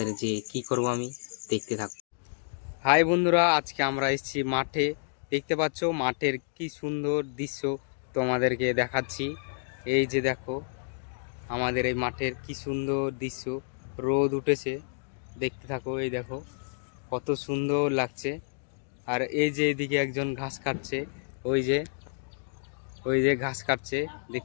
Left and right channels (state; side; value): silent; right; digital silence